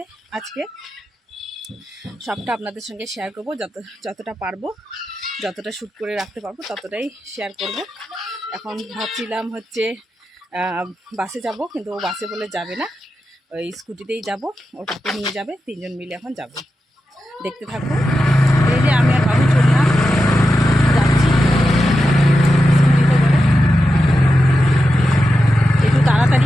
আজকে। সবটা আপনাদের সঙ্গে শেয়ার করবো, যতটা পারবো, যতটা শ্যুট করে রাখতে পারবো ততটাই শেয়ার করব। এখন ভাবছিলাম হচ্ছে বাসে যাব, কিন্তু ও বাসে বলে যাবে না, ওই স্কুটিতেই যাব, ওটাকে নিয়ে যাবে, তিনজন মিলে এখন যাব। দেখতে থাকবো। এই যে আমি আর বাবু চললাম, যাচ্ছি স্কুটিতে করে। একটু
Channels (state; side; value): normal; both; correlation 0.90